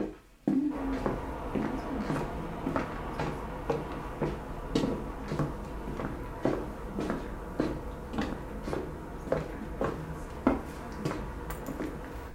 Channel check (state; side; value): identical; both; correlation 1.00